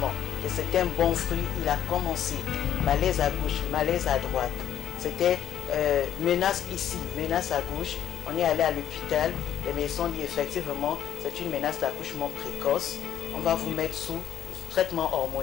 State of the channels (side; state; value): right; quieter; 10.3 dB